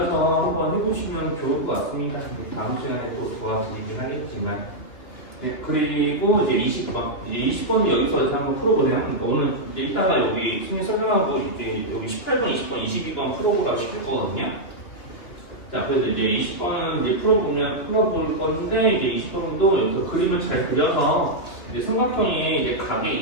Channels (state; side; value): late; right; 2.7 ms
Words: 한번 해보시면 좋을 것 같습니다. 다음 시간에 또 도와드리긴 하겠지만. 네, 그리고 이제 20번. 이제 20번 여기서 이제 한번 풀어보세요. 그러니까 오늘 이제 이따가 여기 승리 설명하고 이제 여기 18번, 20번, 22번 풀어보라고 시킬 거거든요. 자, 그래서 이제 20번은 이제 풀어볼 건데, 이제 20번도 여기서 그림을 잘 그려서 이제 삼각형이 이제